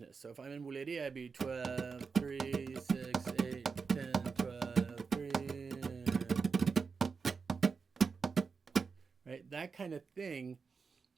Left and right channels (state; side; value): quieter; left; 5.2 dB